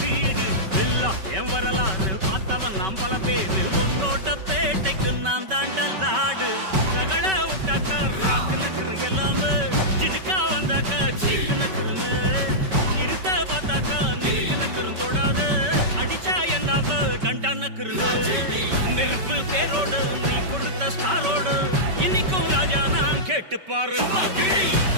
இல்ல என் வரலாறு பார்த்தவன் நாம் பல பேரு உன்னோட்ட பேட்டைக்கு நான் தாண்டா லாடு ரகட விட்டாக்கா ராக்கு நக்குற எல்லாமே ஜினுக்கா வந்தாக்கா சீக்கு நக்குறன்னு இருத்த பார்த்தாக்கா நினைக்கு நக்குறும் தொடாது அடிச்சா என்னாவ டண்டா நக்குறன்னு நெருப்பு பேரோடு நீ கொடுத்த ஸ்டாரோடு இன்னைக்கும் ராஜா நான் கேட்டு பாரு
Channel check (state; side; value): late; left; 5.2 ms